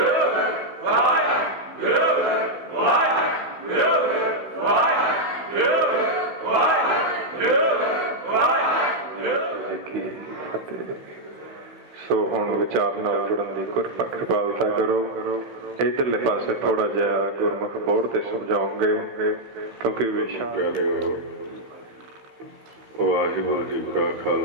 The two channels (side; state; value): left; late; 16 ms